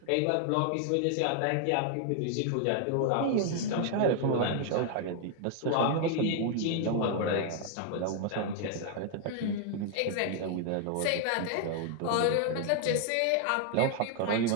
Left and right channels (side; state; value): both; different; correlation 0.00